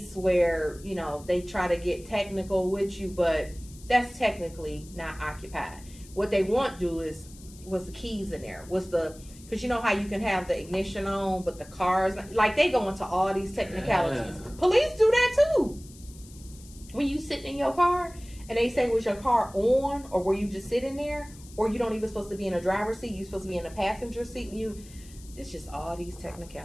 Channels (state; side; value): noise; left; hiss, 21 dB below the sound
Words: where, they try to get technical with you, but that's technically not occupied. What they want to do is, was the keys in there? Because you know how you can have the ignition on, but the cars, like, they go into all these technicalities. Yeah. Police do that too. When you sitting in your car and they say, was your car on, or were you just sitting there, or you don't even supposed to be in a driver's seat, you're supposed to be in a passenger seat. It's just all these